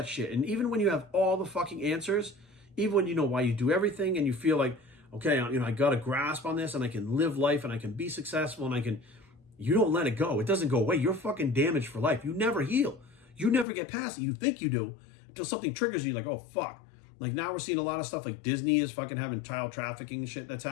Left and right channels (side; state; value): right; drops out; at 13.7 s